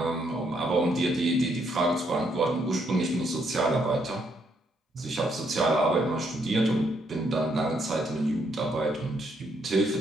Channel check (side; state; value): both; normal; correlation 0.73